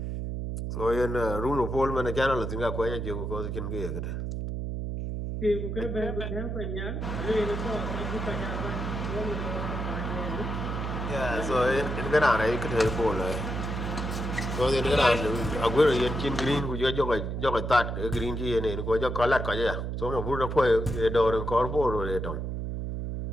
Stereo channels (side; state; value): right; noise; hum, 3 dB below the sound